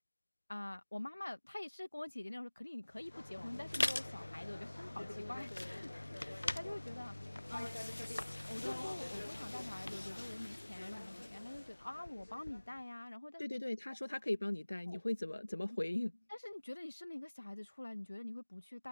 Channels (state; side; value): inverted; both; correlation -1.00